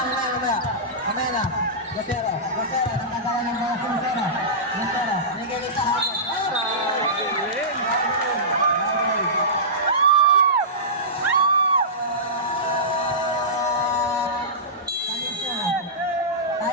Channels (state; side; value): normal; both; correlation -0.18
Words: Morena. Lucero, nakagawa ng bola si Lucero. Lucero, binigay sa hagod.